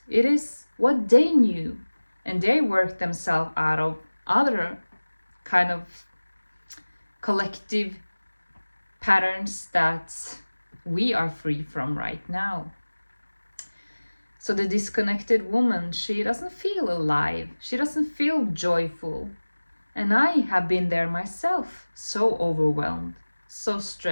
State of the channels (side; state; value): both; inverted; correlation -1.00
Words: It is what they knew. And they worked themselves out of other kind of collective patterns that we are free from right now. So the disconnected woman, she doesn't feel alive. She doesn't feel joyful. And I have been there myself, so overwhelmed, so